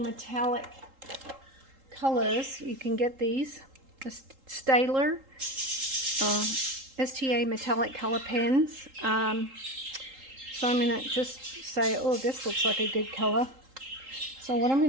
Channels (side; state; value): left; late; 3.8 ms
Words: colors. You can get these, the Staedtler STA metallic color pens. So I'm going to just say, oh, this looks like a good color. So what I'm